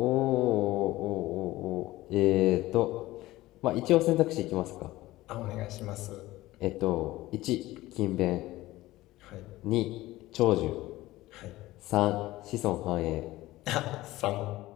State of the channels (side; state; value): right; quieter; 17.4 dB